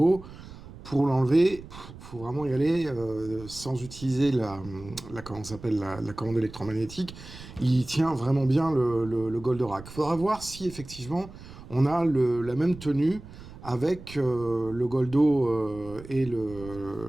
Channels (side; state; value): right; noise; rumble, 16 dB below the sound